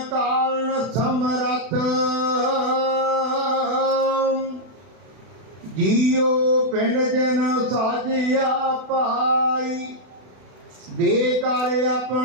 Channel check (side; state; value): left; late; 32 ms